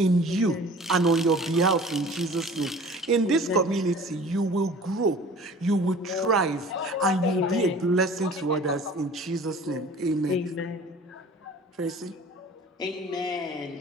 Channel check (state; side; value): normal; both; correlation 0.45